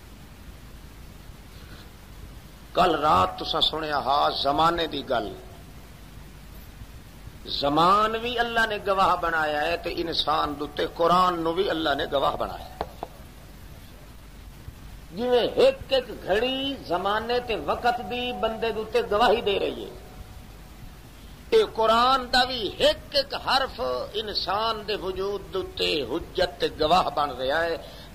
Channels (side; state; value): both; identical; correlation 1.00